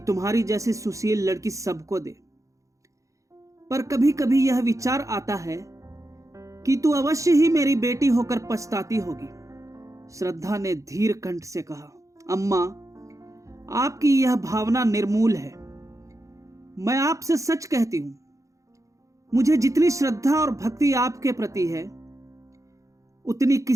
जैसी सुशील लड़की सबको दे। पर कभी कभी यह विचार आता है कि तू अवश्य ही मेरी बेटी होकर पछताती होगी। श्रद्धा ने धीर कंठ से कहा, अम्मा, आपकी यह भावना निर्मूल है। मैं आपसे सच कहती हूं, मुझे जितनी श्रद्धा और भक्ति आपके प्रति है उतनी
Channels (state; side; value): late; left; 0.15 ms